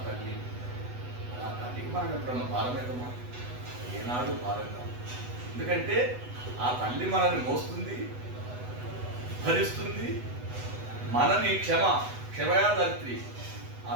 తల్లి. ఆ తల్లికి మనం ఎప్పుడన్నా భారం అవుతామా? ఏనాడు భారం కాదు. ఎందుకంటే ఆ తల్లి మనల్ని మోస్తుంది, భరిస్తుంది, మనని క్షమయా ధరిత్రి. ఆ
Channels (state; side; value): late; left; 8.1 ms